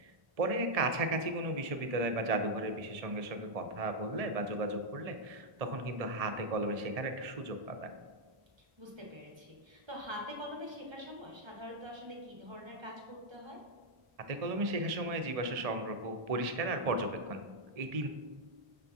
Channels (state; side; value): late; left; 1.7 ms